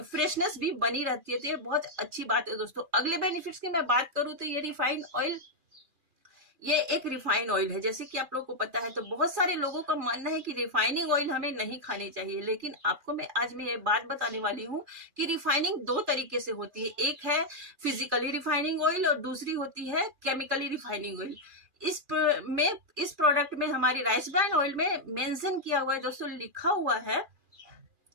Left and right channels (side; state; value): left; late; 2.4 ms